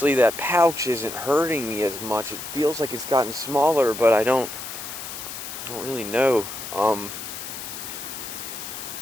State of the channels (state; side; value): noise; left; hiss, 9 dB below the sound